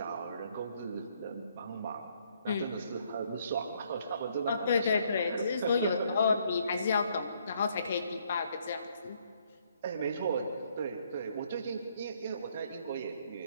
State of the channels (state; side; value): inverted; both; correlation -0.68